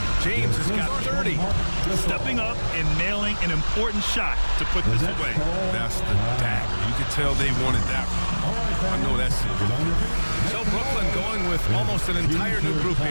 James has got 30. Stepping up and nailing an important shot to put this away. That's the dagger. You could tell they wanted that one. I know that's it. So Brooklyn going with almost an entire new group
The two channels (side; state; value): both; inverted; correlation -1.00